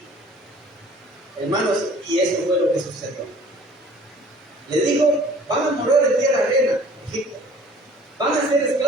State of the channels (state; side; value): normal; both; correlation 0.52